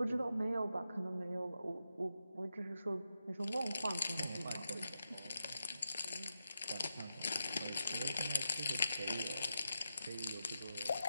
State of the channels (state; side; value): inverted; both; correlation -0.87